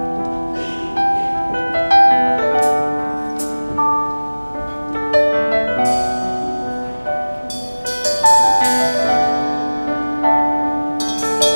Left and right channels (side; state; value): both; inverted; correlation -1.00